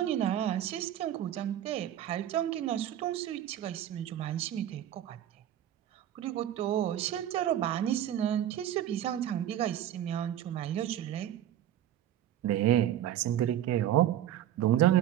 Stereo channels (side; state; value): left; quieter; 11.6 dB